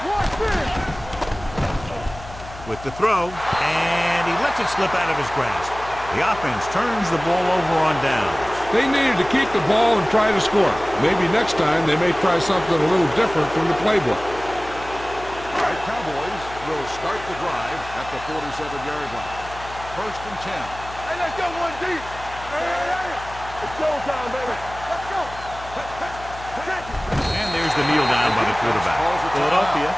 Watch this. With the throw, and he lets it slip out of his grasp. The offense turns the ball over on downs. They needed to keep the ball and try to score. Maybe next time they may try something a little different from the playbook. The Cowboys will start the drive at the 47-yard line. 1st and 10. Hey, let's go, 1 deep. Hey. It's showtime, baby. Let's go. And there's the kneel down by the quarterback. Philadelphia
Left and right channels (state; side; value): noise; left; hum, 15 dB below the sound